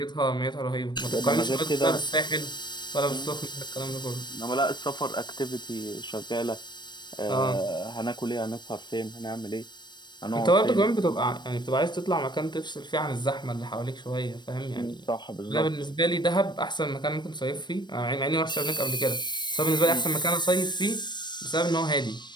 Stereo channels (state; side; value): late; right; 0.22 ms